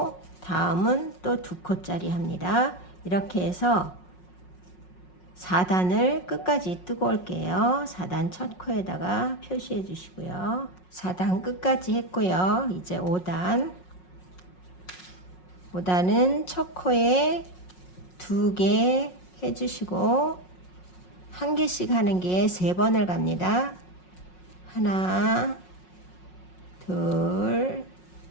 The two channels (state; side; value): late; right; 5.5 ms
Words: 다음은 또 2코짜리 합니다. 이렇게 해서 4단을 끝까지 뜨고 올게요. 4단 첫 코에다가 표시해 주시고요. 4단 끝까지 했고요. 이제 5단은 첫 코에 2개 해주시고 한 개씩 하는 게 3번을 갑니다. 하나, 둘,